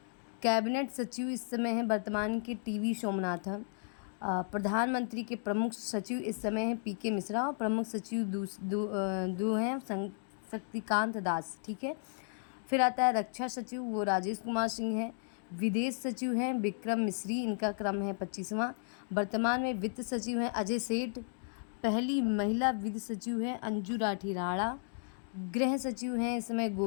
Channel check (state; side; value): silent; right; digital silence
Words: कैबिनेट सचिव इस समय है वर्तमान के TV सोमनाथन। प्रधानमंत्री के प्रमुख सचिव इस समय है PK मिश्रा, और प्रमुख सचिव दो हैं शक्तिकांत दास, ठीक है। फिर आता है रक्षा सचिव, वो राजेश कुमार सिंह हैं। विदेश सचिव हैं विक्रम मिश्री, इनका क्रम है 25वां। वर्तमान में वित्त सचिव हैं अजय सेठ। पहली महिला वित्त सचिव हैं अंजू राठी राणा। गृह सचिव हैं इस समय